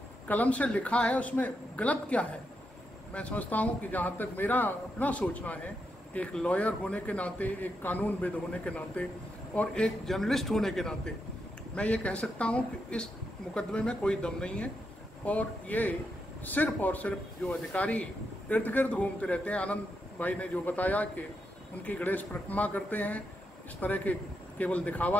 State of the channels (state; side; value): normal; both; correlation 0.83